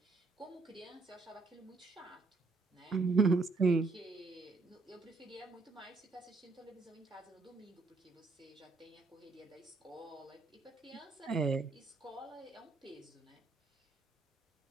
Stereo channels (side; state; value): left; quieter; 3.9 dB